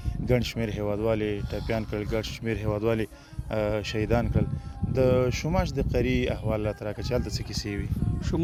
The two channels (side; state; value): both; identical; correlation 1.00